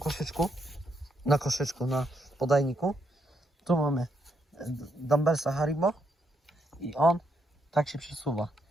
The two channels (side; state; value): both; normal; correlation 0.78